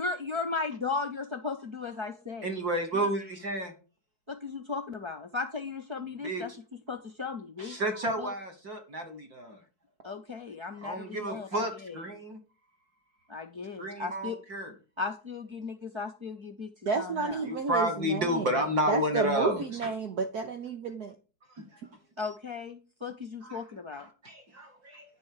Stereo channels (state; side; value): late; left; 4.6 ms